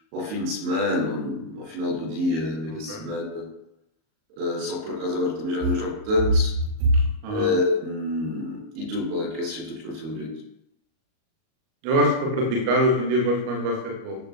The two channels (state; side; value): late; left; 38 ms